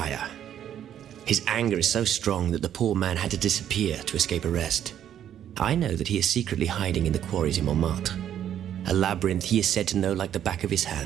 His anger is so strong that the poor man had to disappear to escape arrest. I know that he is secretly hiding in the quarries in Montmartre. A labyrinth he is said to know like the back of his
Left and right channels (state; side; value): quieter; left; 10.3 dB